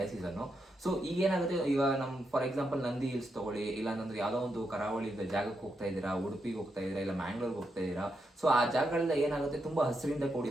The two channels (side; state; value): both; normal; correlation 0.83